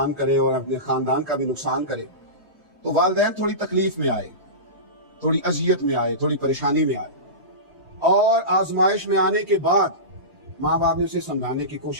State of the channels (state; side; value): late; left; 3.1 ms